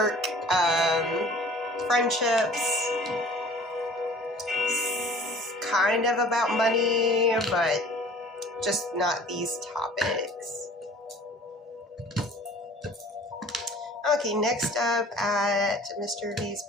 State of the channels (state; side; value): normal; both; correlation 0.49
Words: friendships, kind of about money, but just not these topics. Okay, next up at Mr. V's